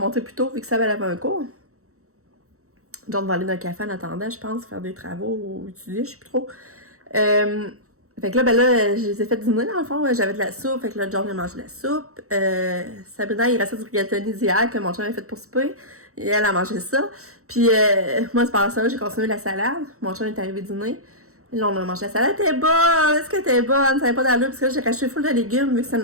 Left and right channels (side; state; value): left; late; 0.64 ms